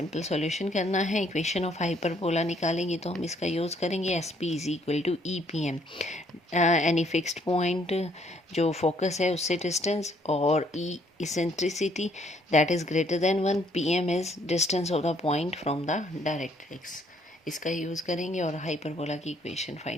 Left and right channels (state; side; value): normal; both; correlation 0.66